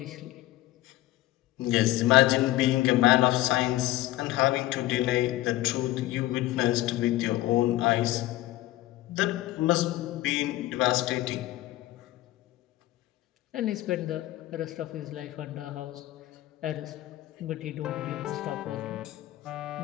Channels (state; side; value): quieter; right; 16.1 dB